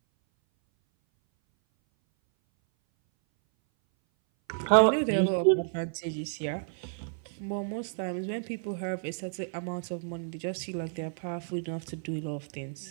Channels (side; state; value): left; silent; 57 dB below the other